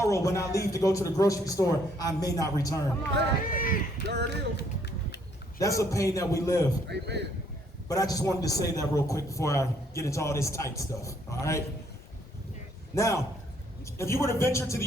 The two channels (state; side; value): normal; both; correlation 0.67